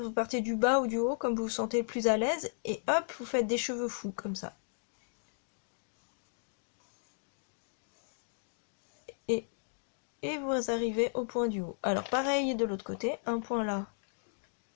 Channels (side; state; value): right; silent; digital silence